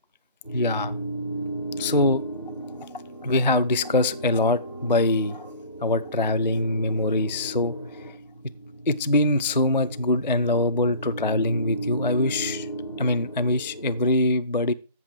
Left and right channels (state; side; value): inverted; both; correlation -0.43